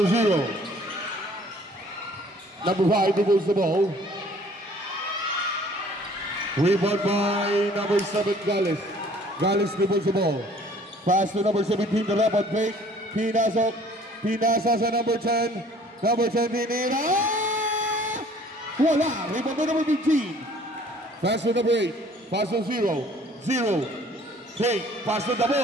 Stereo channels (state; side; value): normal; both; correlation 0.54